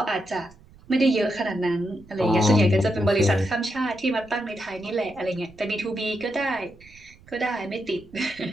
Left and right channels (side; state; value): right; noise; rumble, 25 dB below the sound